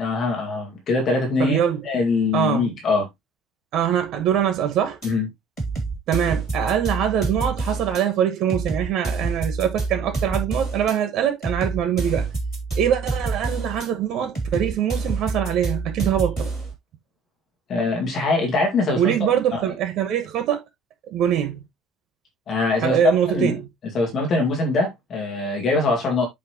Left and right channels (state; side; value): quieter; left; 3.3 dB